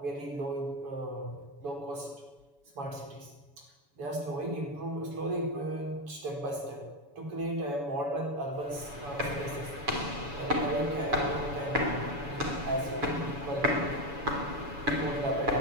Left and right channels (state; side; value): late; left; 7.1 ms